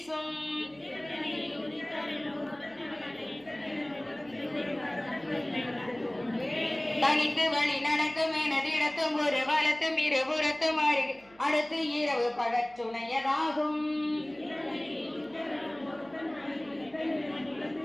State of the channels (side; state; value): right; noise; hum, 27 dB below the sound